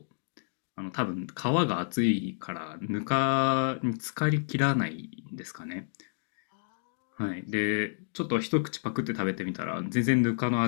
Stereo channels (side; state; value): right; silent; digital silence